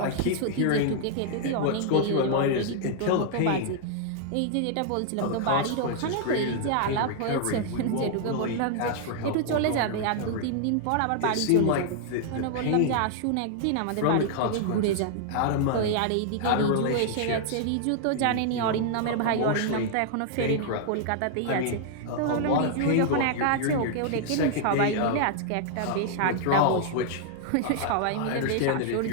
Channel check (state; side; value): different; both; correlation -0.01